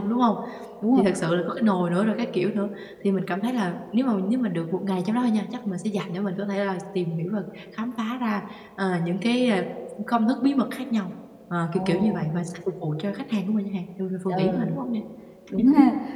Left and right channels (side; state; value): both; identical; correlation 1.00